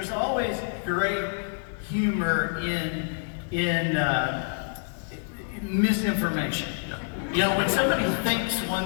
always great humor in misinformation. You know, when somebody thinks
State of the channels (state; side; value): silent; right; 60 dB below the other